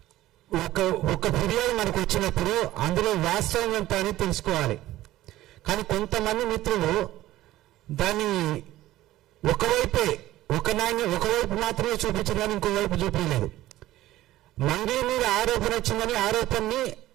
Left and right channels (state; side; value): quieter; left; 15.4 dB